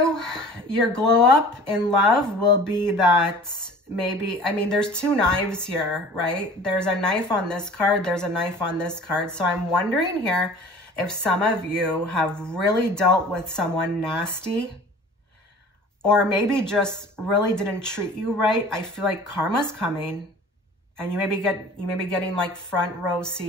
your glow up in love will be that maybe, I mean, there's two knives here, right? There's a knife on this card. There's a knife on this card. So I'm wondering here if some of you have really dealt with someone nasty or maybe just really didn't treat you right. I feel like karma's coming and you may be getting like front row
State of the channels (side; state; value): both; normal; correlation 0.44